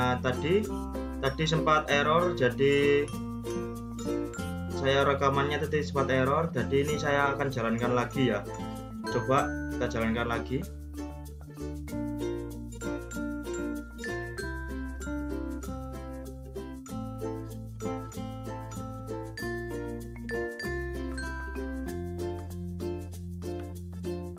tadi sempat error, jadi saya rekamannya tadi sempat error, jadi ini saya akan jalankan lagi ya. Coba kita jalankan lagi.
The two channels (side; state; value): both; identical; correlation 1.00